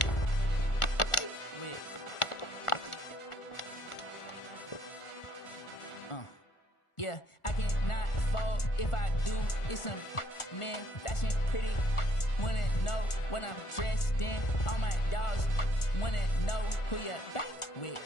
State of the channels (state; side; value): late; right; 1.4 ms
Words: Wait. Yeah, I cannot fold. If I do, it's some man fashion pretty. Wanna know what I'm dressed in. All my dogs wanna know who you bank with.